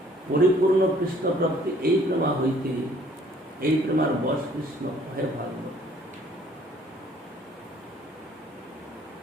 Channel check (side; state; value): both; normal; correlation 0.59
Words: পরিপূর্ণ কৃষ্ণ প্রাপ্তি এই প্রেমা হইতে, এই প্রেমার বশ কৃষ্ণ হয় ভাগবত।